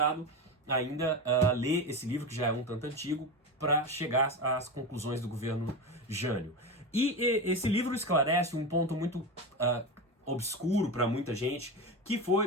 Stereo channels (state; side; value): normal; both; correlation 0.20